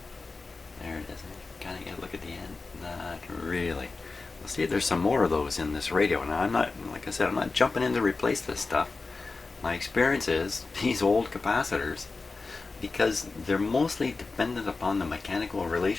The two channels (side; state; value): right; quieter; 3.9 dB